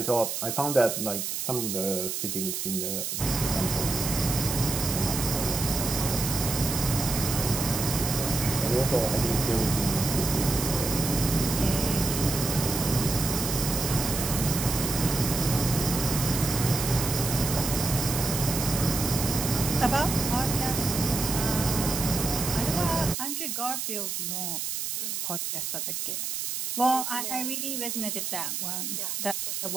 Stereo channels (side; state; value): right; noise; hiss, 3 dB below the sound